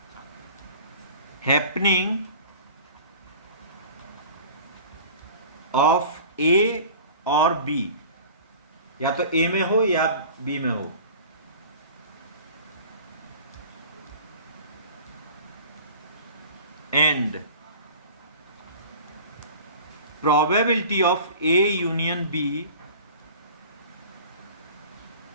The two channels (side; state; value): both; inverted; correlation -0.41